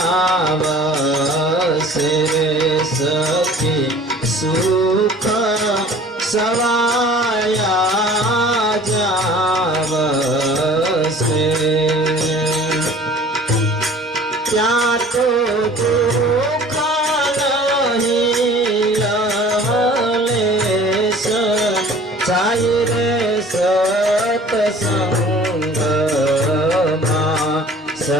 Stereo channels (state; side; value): normal; both; correlation 0.47